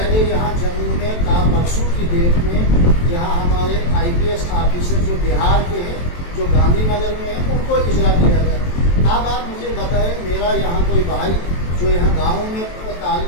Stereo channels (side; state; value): right; late; 23 ms